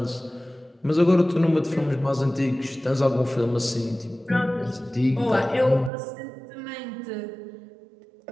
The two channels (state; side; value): drops out; left; at 5.9 s